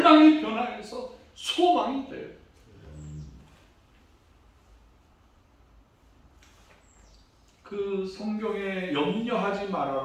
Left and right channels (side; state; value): both; identical; correlation 1.00